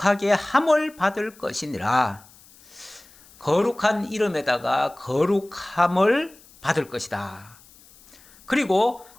함을 받을 것이니라. 거룩한 이름에다가 거룩함을 받을 것이다. 그리고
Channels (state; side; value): noise; left; hiss, 25 dB below the sound